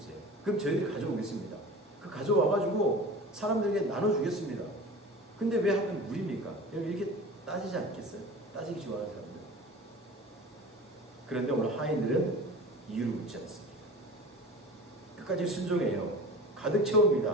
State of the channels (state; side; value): normal; both; correlation 0.37